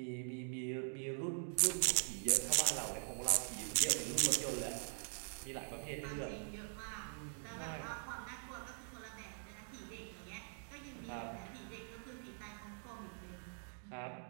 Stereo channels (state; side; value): silent; left; digital silence